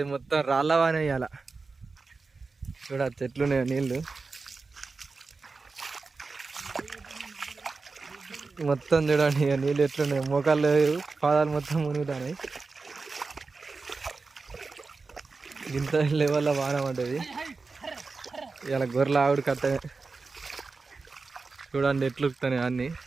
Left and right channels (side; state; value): left; quieter; 4.2 dB